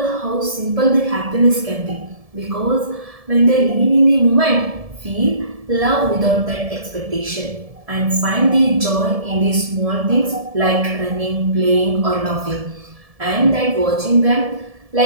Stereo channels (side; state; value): left; late; 1.7 ms